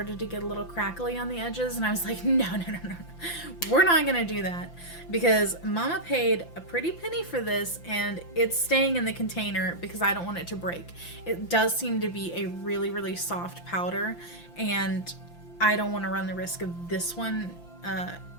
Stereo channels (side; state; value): right; late; 5.9 ms